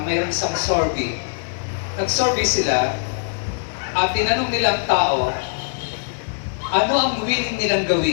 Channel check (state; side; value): silent; right; digital silence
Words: mayroong isang survey. Nag-survey sila at tinanong nilang tao, ano ang willing nilang